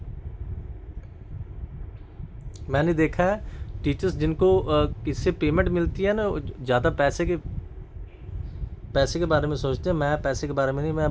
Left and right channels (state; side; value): identical; both; correlation 1.00